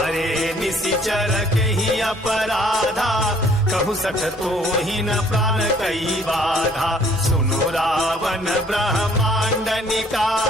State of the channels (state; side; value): normal; both; correlation 0.59